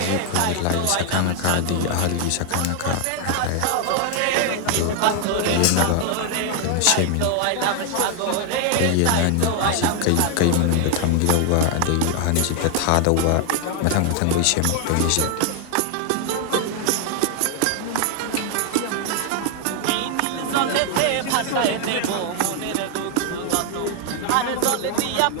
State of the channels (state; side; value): different; both; correlation 0.00